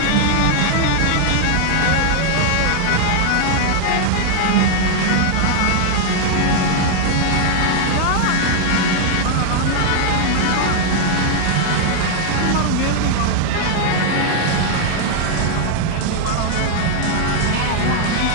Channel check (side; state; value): both; different; correlation 0.00